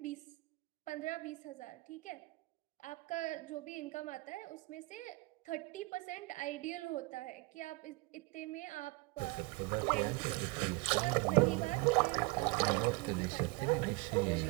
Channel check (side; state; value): left; quieter; 24.3 dB